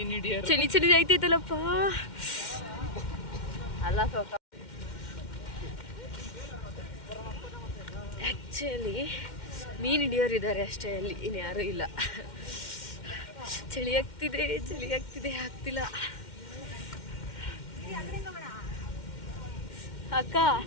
ಹಿಡಿಯೋರು. ಚಳಿ ಚಳಿ ಆಯ್ತೈತಲ್ಲಪ್ಪ. ಅಲ್ಲ ಸ್ವಲ್ಪ ಆ್ಯಕ್ಚುಲಿ ಮೀನು ಹಿಡಿಯೋರು ಇದ್ದಾರೆ ಅಷ್ಟೇ, ಅಲ್ಲಿ ಇನ್ಯಾರೂ ಇಲ್ಲ. ಚಳಿ ಆಗ್ತಿದೆ, ಆಗ್ತಿಲ್ಲ. ಅಕ್ಕ,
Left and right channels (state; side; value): late; right; 2.1 ms